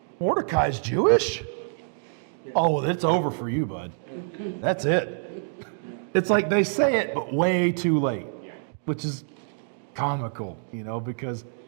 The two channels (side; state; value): left; silent; digital silence